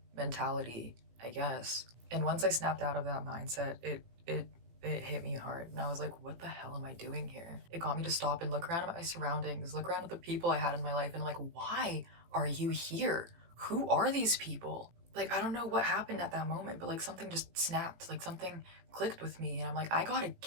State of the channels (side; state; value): left; late; 18 ms